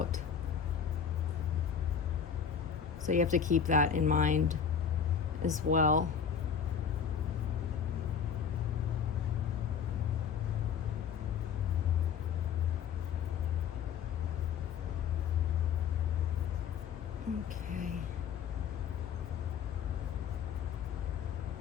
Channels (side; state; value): right; quieter; 7.2 dB